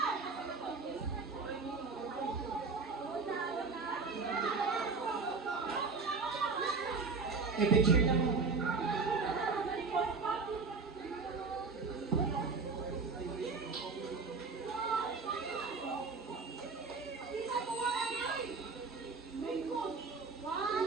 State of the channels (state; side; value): quieter; left; 4.4 dB